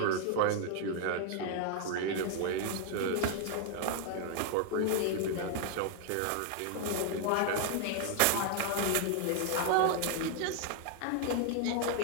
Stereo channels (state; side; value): different; both; correlation 0.00